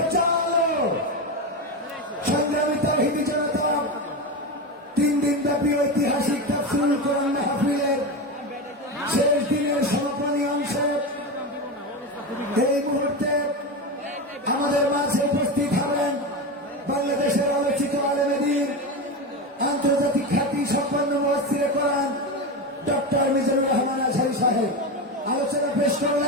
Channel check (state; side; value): normal; both; correlation 0.18